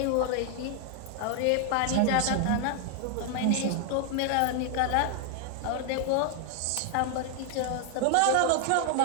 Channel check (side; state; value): both; different; correlation 0.00